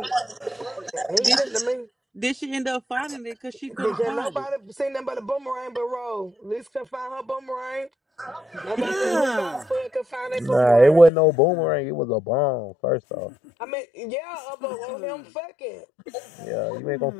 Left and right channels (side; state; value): right; drops out; at 11.1 s